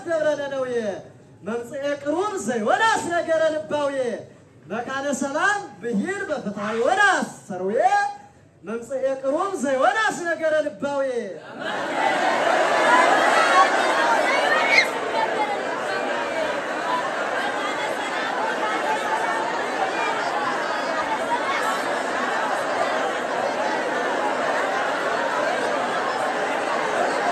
دبرنا نوية ممصئ قروب زيوناس نجر لباوية مكان سلام بهيل بفتح وناس سروية ممصئ قروب زيوناس نجر لباوية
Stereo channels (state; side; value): identical; both; correlation 1.00